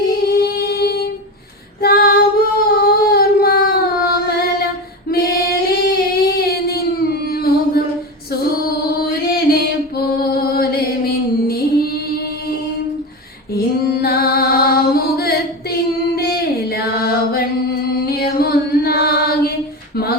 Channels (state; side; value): normal; both; correlation 0.22